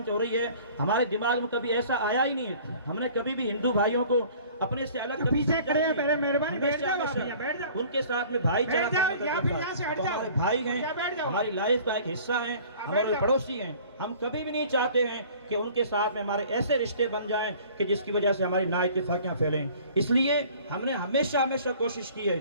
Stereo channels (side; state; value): both; inverted; correlation -0.50